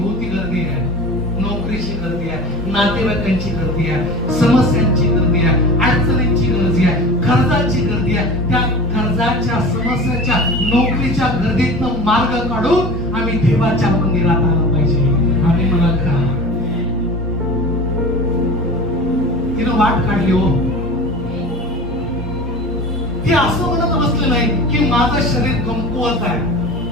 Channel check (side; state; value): both; normal; correlation 0.33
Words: गर्दी आहे, नोकरीची गर्दी आहे, नातेवाईकांची गर्दी आहे, समस्यांची गर्दी आहे, अडचणींची गर्दी आहे, कर्जाची गर्दी आहे. त्या कर्जाच्या, समस्याच्या, नोकरीच्या गर्दीतनं मार्ग काढून आम्ही देवाच्या मंदिरात आलं पाहिजे. आम्ही मला का तिनं वाट काढली हो. ती असं म्हणत बसले नाही की माझं शरीर कमकुवत आहे,